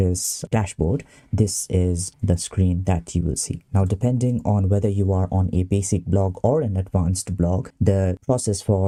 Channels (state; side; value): identical; both; correlation 1.00